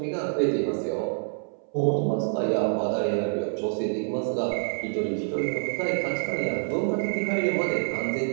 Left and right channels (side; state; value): left; silent; 60 dB below the other